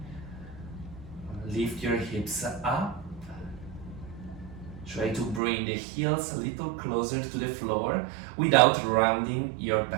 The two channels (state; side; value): drops out; left; at 5.4 s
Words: Lift your hips up. Try to bring the heels a little closer to the floor without rounding your